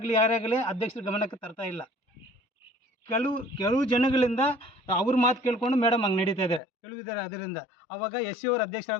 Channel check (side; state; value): right; drops out; at 6.6 s